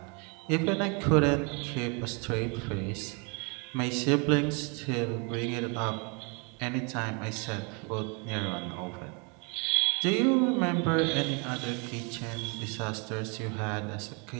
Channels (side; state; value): left; quieter; 33.0 dB